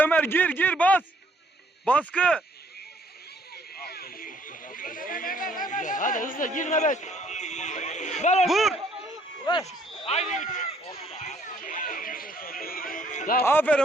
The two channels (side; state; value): both; normal; correlation 0.64